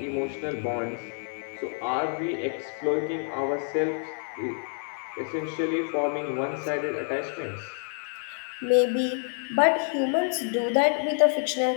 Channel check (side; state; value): right; silent; 56 dB below the other